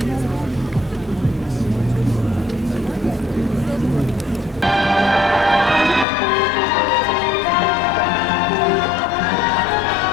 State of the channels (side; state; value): right; drops out; at 6.1 s